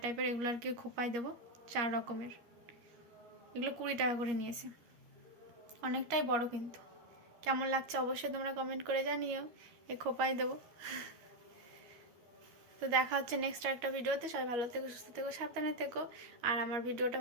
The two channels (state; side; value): late; left; 12 ms